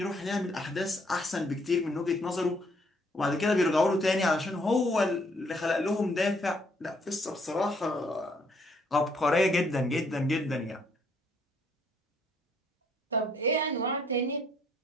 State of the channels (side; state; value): both; normal; correlation 0.67